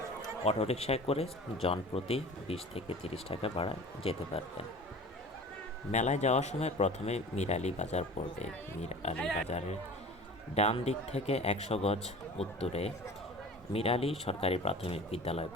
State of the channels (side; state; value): both; normal; correlation 0.40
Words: অটোরিকশায় করে জনপ্রতি 20 থেকে 30 টাকা ভাড়ায় যেতে পারবেন। মেলায় যাওয়ার সময় প্রথমে মীর আলী বাজার পড়বে। মীর আলী বাজারের ডান দিক থেকে 100 গজ উত্তরে মীর আলী সরকারি প্রাথমিক বিদ্যালয়